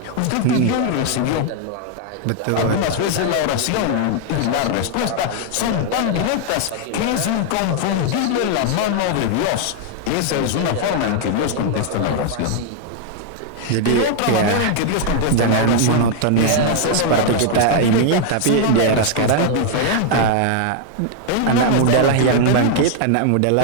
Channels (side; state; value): both; different; correlation 0.00